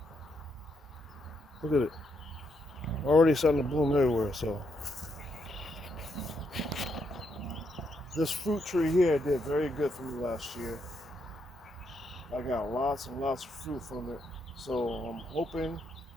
Look at it. Already starting to bloom everywhere. So this fruit tree here did very good for me last year. I got lots and lots of fruit from it. So I'm hoping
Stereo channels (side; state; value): both; normal; correlation 0.78